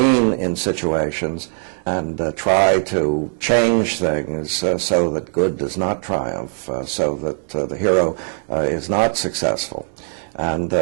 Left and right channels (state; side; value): silent; left; digital silence